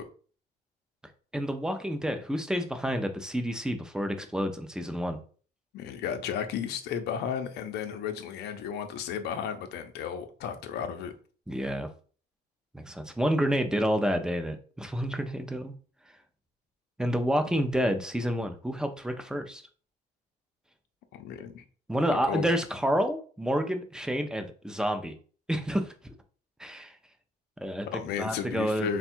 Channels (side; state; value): both; normal; correlation 0.75